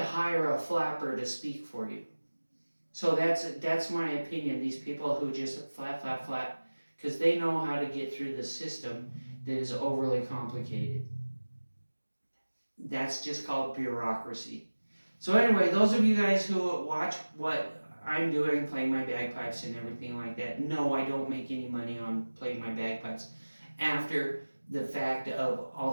hire a flapper to speak for you. So that's my opinion. These people who just flap, because they know how to get through the system that is overly complicated. That's just called bureaucracy. So anyway, those of you guys who watch what I'm doing, playing my bagpipes and everything like that, no, I don't make any money on playing my bagpipes. After the fact of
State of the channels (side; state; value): both; inverted; correlation -1.00